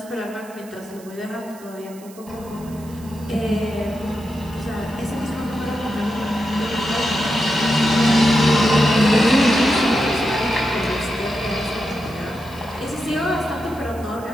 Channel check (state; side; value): noise; right; hiss, 22 dB below the sound